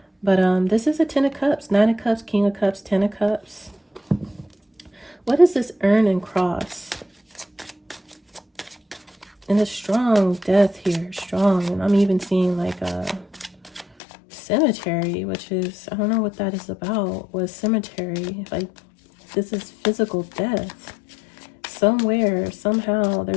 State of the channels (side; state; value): right; drops out; at 13.9 s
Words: But this is a 10 of Cups, 9 of Cups, King of Cups, 10 of Cups. What is this urn and cross? And a strong death here, strong. And I'm even seeing like a cemetery, which is, I don't know what that is about. What cemetery? Like, this is physical death. Somewhere, somehow,